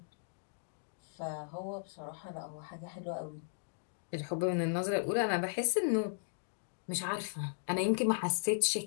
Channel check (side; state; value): right; silent; digital silence